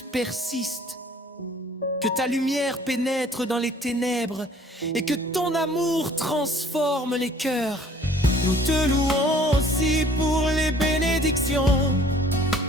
persistent, que ta lumière pénètre dans les ténèbres et que ton amour transforme les cœurs. Nous te louons aussi pour les bénédictions,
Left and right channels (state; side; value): normal; both; correlation 0.54